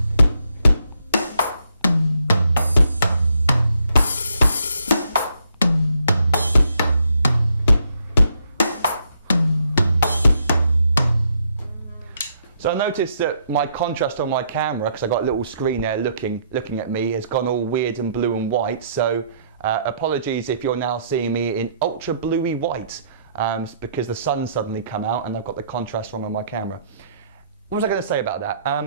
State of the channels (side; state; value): both; inverted; correlation -0.71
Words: So I noticed that my contrast on my camera, because I got a little screen there looking at me, has gone all weird and blue and white. So apologies if you're now seeing me in ultra bluey white. because the sun's suddenly come out and I've got the contrast wrong on my camera. What was I going to say about that?